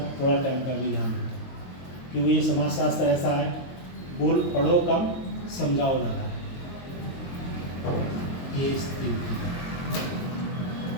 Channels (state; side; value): late; right; 22 ms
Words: थोड़ा टाइम का भी ध्यान रखें, क्योंकि ये समाजशास्त्र ऐसा है, बोल पढ़ो कम समझाओ ज़्यादा। ये स्थिति